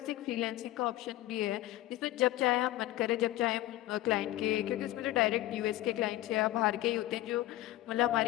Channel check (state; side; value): quieter; right; 15.7 dB